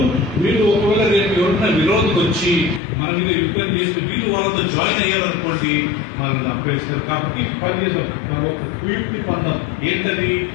వీళ్ళు ఒకవేళ రేపు ఎవరైనా విరోధకు వచ్చి మన మీద యుద్ధం చేస్తే వీళ్ళు వాళ్ళతో జాయిన్ అయ్యారనుకోండి మనల్ని చంపేస్తారు. కాబట్టి పని చేద్దాం, మనం ఒక కుయుక్తి పొందాం. ఏంటది,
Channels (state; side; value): drops out; right; at 2.8 s